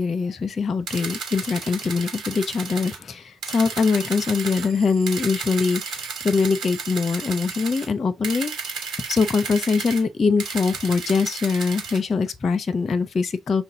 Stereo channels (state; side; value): quieter; right; 3.7 dB